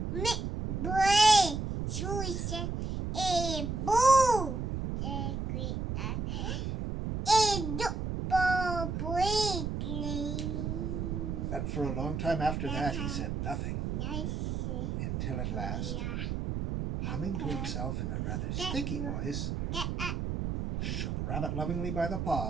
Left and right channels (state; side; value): noise; right; rumble, 2 dB below the sound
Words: And for a long time after that he said nothing, until at last, humming to himself in a rather sticky voice, shook Rabbit lovingly by the